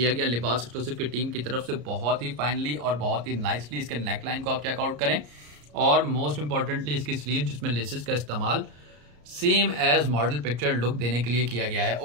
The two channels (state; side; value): late; left; 34 ms